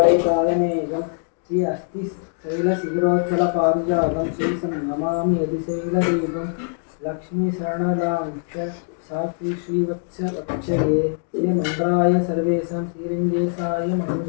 பாதமேகம் ஸ்ரீ அஸ்தி சைல சிகரோச்சல பாரிஜாதம் ஸ்ரீ நமாமி அதிசைல தீபம் லக்ஷ்மி சரணதாஞ்ச சாஸ்திரி ஸ்ரீவத்ச வட்சயே ஸ்ரீ மந்திராய சர்வேஷாம் ஸ்ரீரங்கேசாய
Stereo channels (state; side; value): silent; right; 64 dB below the other